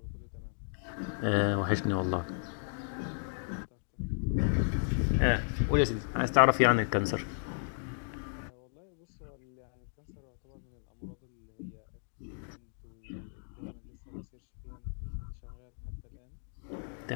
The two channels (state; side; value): silent; right; digital silence